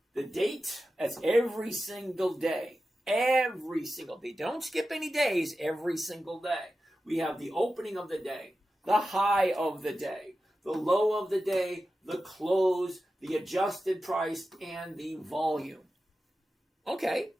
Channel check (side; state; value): both; normal; correlation 0.93